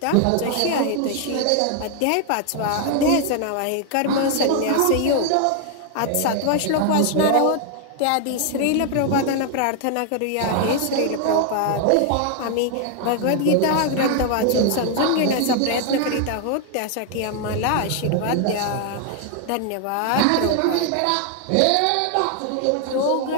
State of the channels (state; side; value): different; both; correlation 0.00